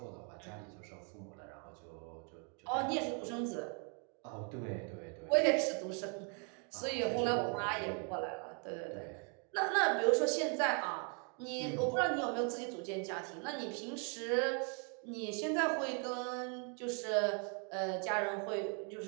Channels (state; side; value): quieter; left; 39.4 dB